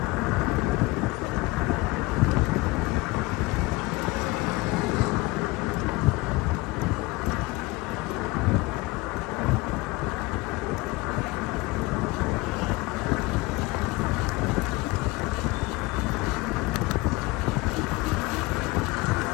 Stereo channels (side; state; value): right; quieter; 21.7 dB